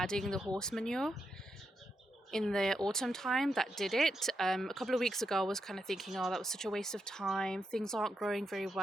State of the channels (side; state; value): both; normal; correlation 0.83